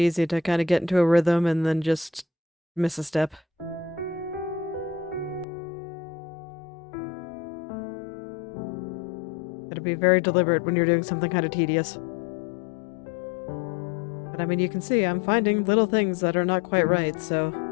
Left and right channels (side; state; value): right; drops out; at 5.5 s